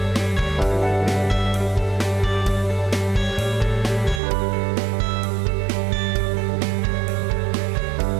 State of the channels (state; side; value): drops out; left; at 4.2 s